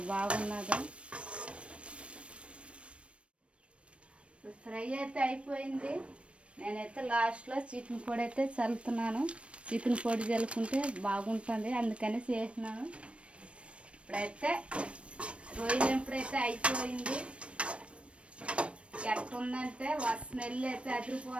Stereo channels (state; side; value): late; left; 0.060 ms